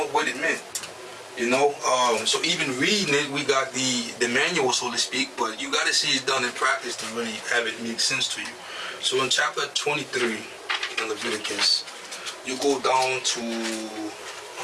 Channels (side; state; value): both; identical; correlation 1.00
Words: what it meant. You know, so even reading it, we got the manual, so to speak, but you got to see it done in practice to really have it make sense to you. So in chapter 23 in Leviticus, you go down to